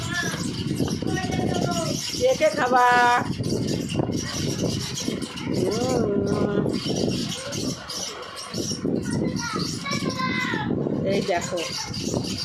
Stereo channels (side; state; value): both; identical; correlation 1.00